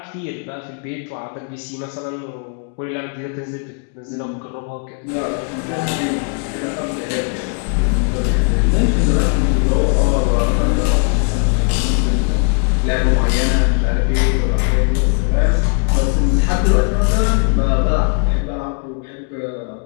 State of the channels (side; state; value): right; quieter; 39.5 dB